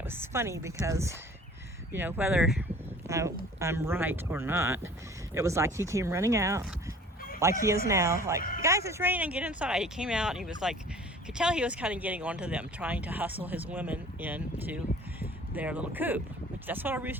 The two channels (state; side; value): normal; both; correlation 0.48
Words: was funny because, you know, whether I'm right or not, it was like he came running out like he is now, like, guys, it's raining, get inside. He came out and he was like, you could tell he was kind of getting onto them, trying to hustle his women into their little coop, which that's what a